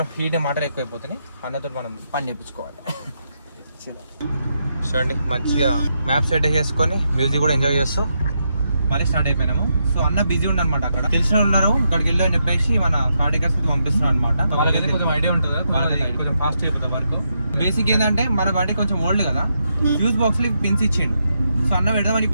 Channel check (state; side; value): inverted; both; correlation -0.82